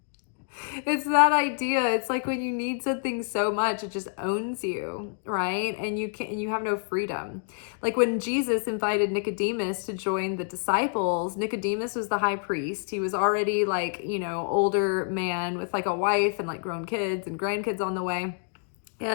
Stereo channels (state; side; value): silent; right; digital silence